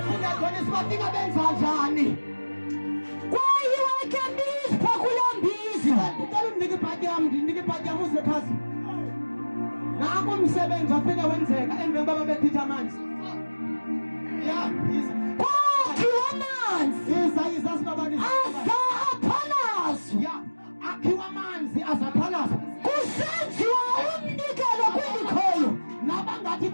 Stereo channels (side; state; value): both; inverted; correlation -1.00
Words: Funda khona sibafika benza njani kwayiwe kembizi phakulambizi ngicela unike ibhadi yami uze phansi nangu umsebenzi wafika wenzeka emveni baba bethitha amanzi kwakhiwa amanzi yiza sibabani azaphalazwa akhiwa amanzi azaphalazwa kusenziwa umnikelo kwindikhoyo nabangathi